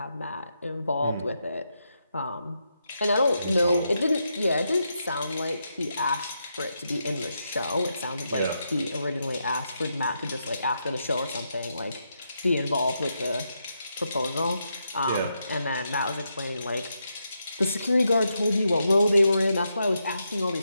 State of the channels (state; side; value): inverted; both; correlation -0.83